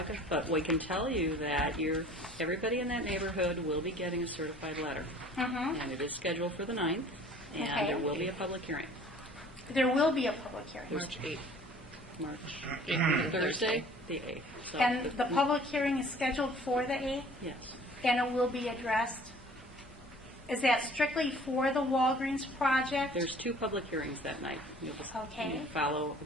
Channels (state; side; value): normal; both; correlation 0.50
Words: but we can tell you that everybody in that neighborhood will be getting a certified letter. And it is scheduled for the 9th, and there will be a public hearing. There will be a public hearing. March 8th. March 8th, Thursday, the 8th. So and the public hearing is scheduled for the 8th? Yes. And it will be addressed? Is that strictly for the Walgreens project? There's 2 public hearings that night. You'll just Okay. follow.